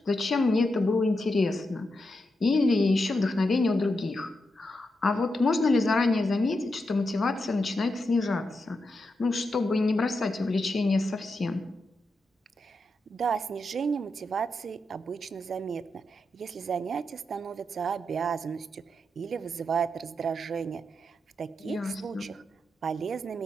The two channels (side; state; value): both; normal; correlation 0.86